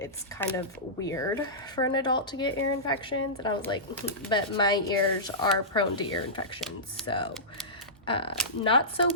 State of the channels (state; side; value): normal; both; correlation -0.17